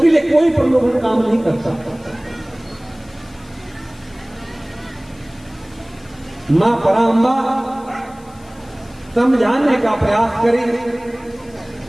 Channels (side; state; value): left; noise; hiss, 27 dB below the sound